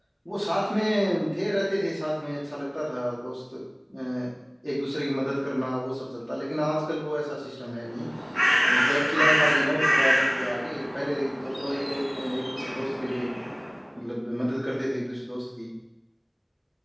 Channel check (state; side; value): identical; both; correlation 1.00